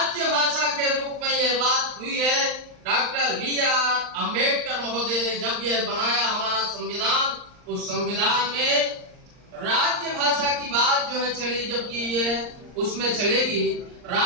भाषा के रूप में यह बात हुई है। Doctor B R. अंबेडकर महोदय ने जब यह बनाया हमारा संविधान, उस संविधान में राज्य भाषा की बात जो है चली, जबकि यह उसमें चलेगी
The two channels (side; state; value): left; late; 39 ms